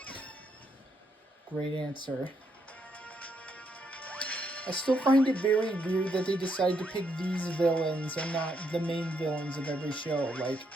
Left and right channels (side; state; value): both; normal; correlation 0.77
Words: Great answer. I still find it very weird that they decided to pick these villains and not the main villains of every show. Like,